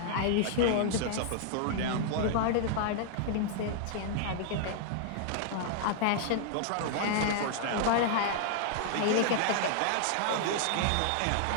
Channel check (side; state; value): both; different; correlation -0.01